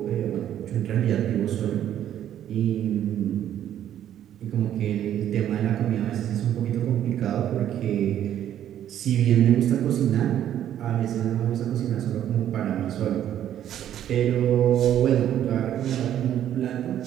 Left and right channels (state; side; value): quieter; left; 10.9 dB